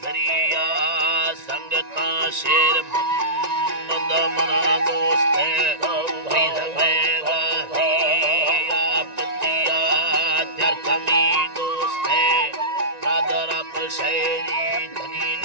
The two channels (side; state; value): left; late; 1.9 ms